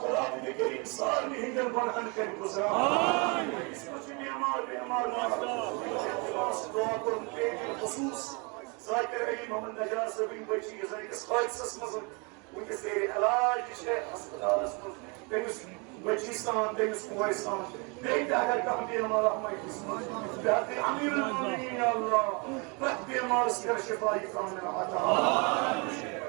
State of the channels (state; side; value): quieter; left; 31.7 dB